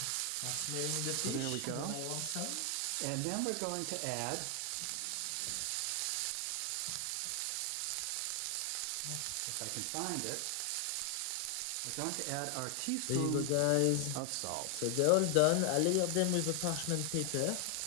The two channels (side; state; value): both; different; correlation 0.00